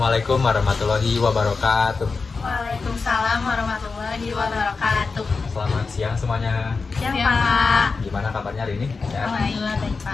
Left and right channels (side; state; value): right; quieter; 4.4 dB